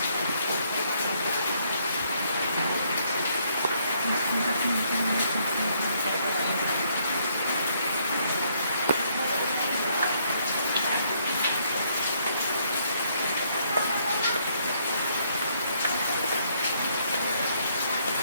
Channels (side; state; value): both; inverted; correlation -0.70